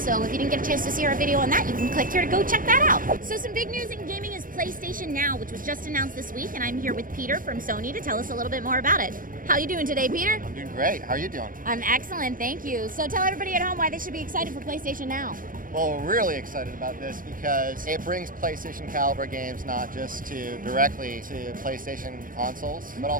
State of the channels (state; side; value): late; left; 0.40 ms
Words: if you didn't get a chance to see our video on that, you can click here to go check that out. So some big news in gaming is PlayStation Now, which was just announced this week. And I'm here with Peter from Sony to tell us a little bit more about it. How are you doing today, Peter? I'm doing great. How are you doing? I'm excellent, thank you. So tell everybody at home why they should be excited for PlayStation Now. Well, we're really excited about this because it brings PlayStation caliber games not just directly to PlayStation consoles, but